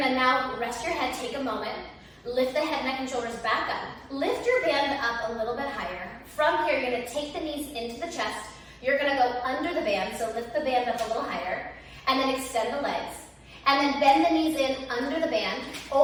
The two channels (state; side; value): identical; both; correlation 1.00